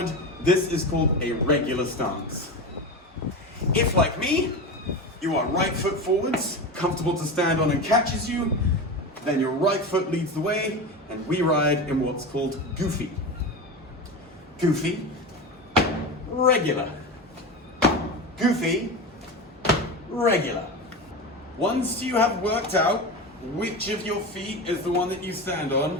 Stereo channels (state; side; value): normal; both; correlation 0.24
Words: this is called a regular stance. If, like me, you are right foot forwards, comfortable to stand on and catches you, then your right foot leads the way, and we ride in what's called goofy. Goofy, regular. Goofy, regular. Once you have worked out which of your feet is the one that you stand on,